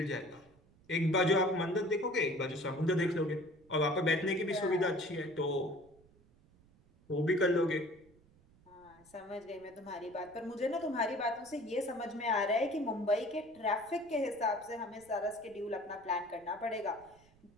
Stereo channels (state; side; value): noise; right; rumble, 29 dB below the sound